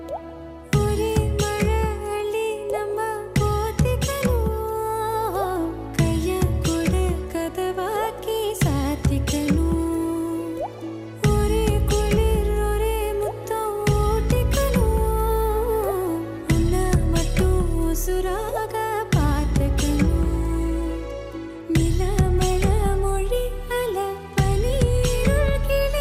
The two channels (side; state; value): both; identical; correlation 1.00